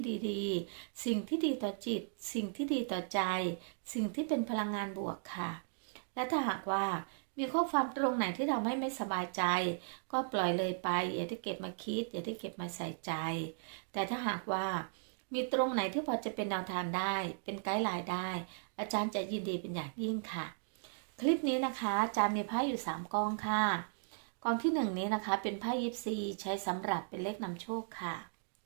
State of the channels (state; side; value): silent; left; digital silence